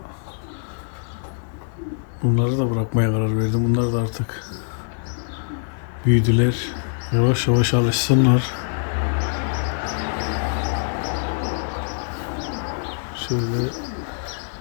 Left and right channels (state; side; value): silent; right; digital silence